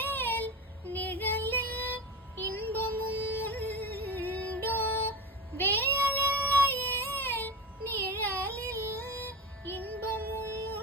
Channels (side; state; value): both; normal; correlation 0.24